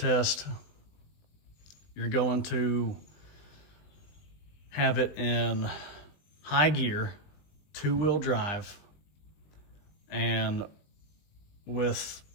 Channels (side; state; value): right; late; 20 ms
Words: you're going to have it in high gear, 2-wheel drive, and with